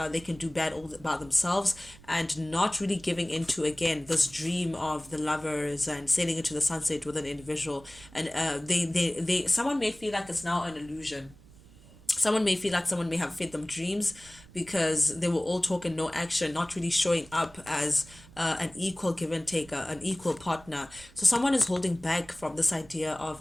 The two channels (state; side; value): noise; right; rumble, 22 dB below the sound